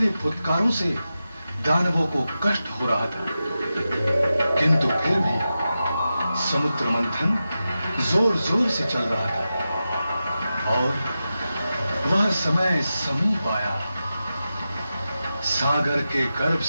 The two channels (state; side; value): inverted; both; correlation -0.92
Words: फुत्कारों से दानवों को कष्ट हो रहा था, किंतु फिर भी समुद्र मंथन जोर जोर से चल रहा था और वह समय समीप आया। सागर के गर्भ